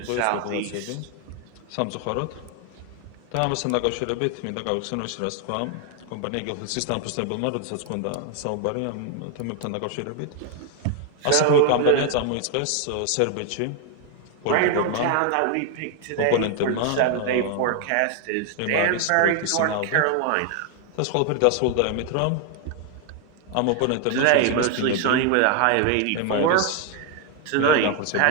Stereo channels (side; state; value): both; different; correlation 0.00